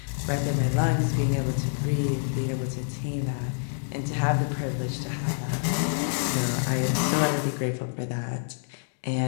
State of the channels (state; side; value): silent; right; digital silence